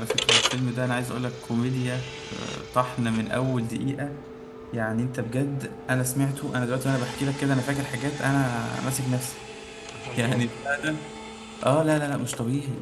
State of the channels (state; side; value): identical; both; correlation 1.00